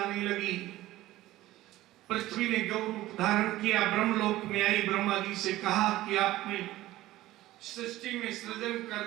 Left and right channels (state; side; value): quieter; left; 16.3 dB